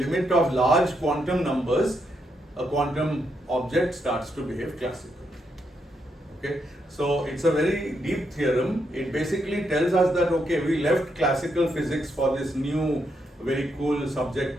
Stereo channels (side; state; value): both; normal; correlation 0.79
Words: of large quantum numbers, a quantum object starts to behave classical. Okay, so it's a very deep theorem. It basically tells us that, okay, we left classical physics for this new very cool